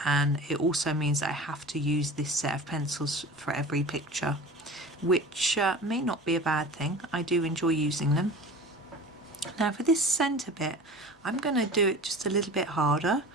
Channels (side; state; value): both; normal; correlation 0.37